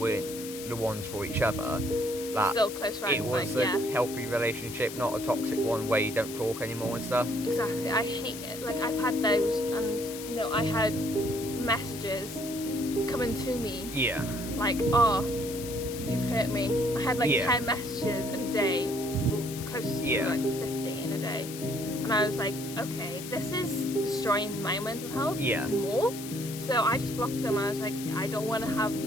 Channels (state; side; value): noise; left; hiss, 11 dB below the sound